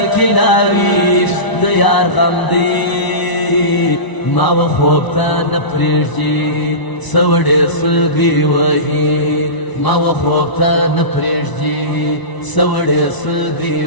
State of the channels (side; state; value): right; late; 1.0 ms